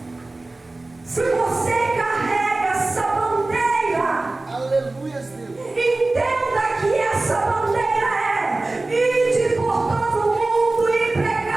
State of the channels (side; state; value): left; quieter; 3.1 dB